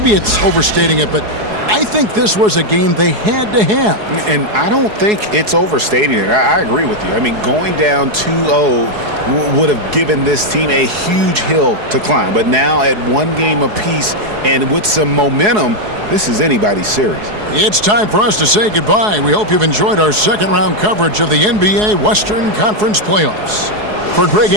it's overstating it, but I think this was a game they had to have. And I don't think it's overstating it. I agree with you. I mean, going down 2-0 would have given this team a huge hill to climb. But now at 1 game apiece and with some momentum, this is anybody's series. It's time for us to say goodbye. We hope you've enjoyed our second-round coverage of the NBA Western Conference Playoffs. For Greg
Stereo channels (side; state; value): left; late; 4.7 ms